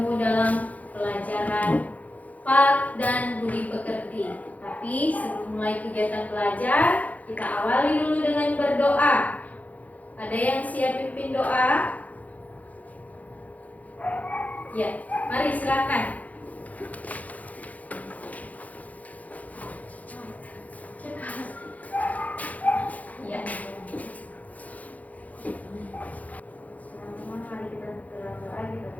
dalam pelajaran Pak dan Budi Pekerti. Tapi sebelum mulai kegiatan belajar, kita awali dulu dengan berdoa. Ada yang siap pimpin doa? Ya, mari silakan. Ya. Mari kita berdoa, kita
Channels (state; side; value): late; right; 0.075 ms